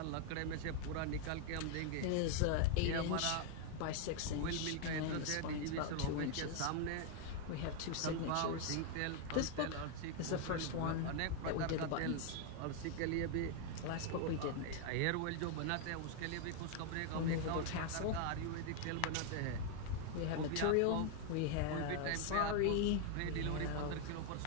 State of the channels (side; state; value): both; different; correlation 0.00